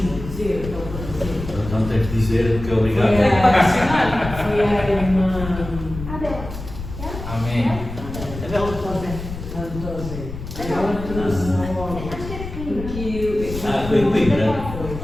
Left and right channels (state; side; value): noise; left; rumble, 9 dB below the sound